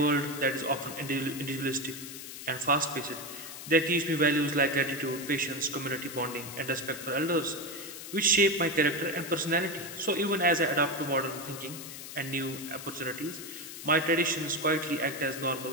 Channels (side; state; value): left; noise; hiss, 11 dB below the sound